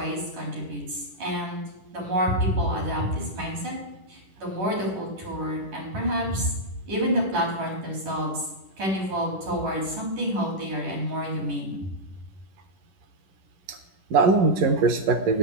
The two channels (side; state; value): left; late; 10 ms